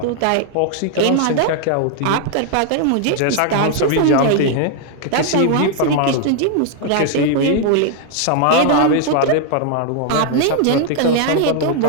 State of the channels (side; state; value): both; different; correlation 0.00